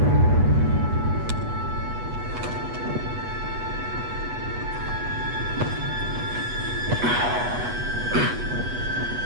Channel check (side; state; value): left; late; 8.2 ms